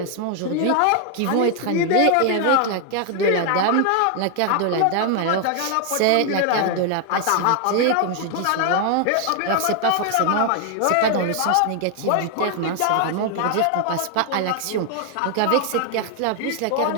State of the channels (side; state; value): both; different; correlation 0.00